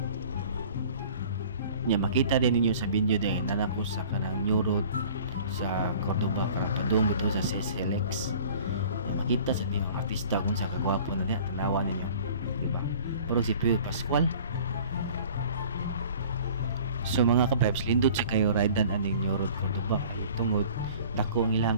Nya makita din ninyo sa video din na nako sa kanang new road sa Cordoba para padung bitaw sa SLX. Makita sa mga artista kung sa kagwapo na niya tanawa ninyo, di ba? Pero si Pio Pascual. So mga ka-vibes, lindot sa kayo ridean aning new road Cordoba tungod dako ang ilang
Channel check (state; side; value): inverted; both; correlation -0.47